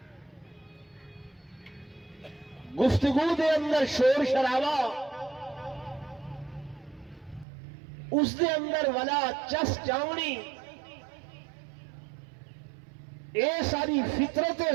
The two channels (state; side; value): drops out; left; at 7.5 s